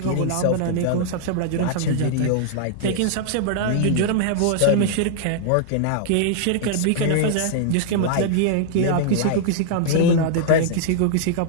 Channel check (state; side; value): different; both; correlation -0.01